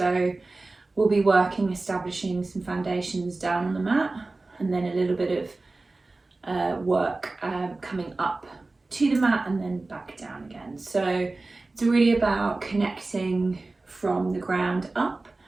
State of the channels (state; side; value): quieter; left; 3.3 dB